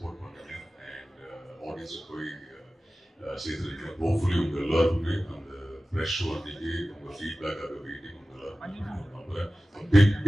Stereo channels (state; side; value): normal; both; correlation 0.96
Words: பண்ணுங்க அண்ட் ஆடியன்ஸுக்கு போய் சேர்த்துருக்கீங்க ஹோப்ஃபுல்லி உங்க எல்லாருக்குமே அந்த ஃப்ரெஷ் அன்னைக்கு உங்க ஃபீட்பேக்காக வெயிட்டிங் உங்க எல்லாருக்கும் நம்புறேன்